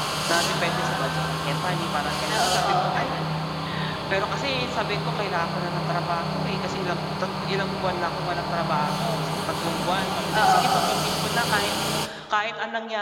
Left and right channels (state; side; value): identical; both; correlation 1.00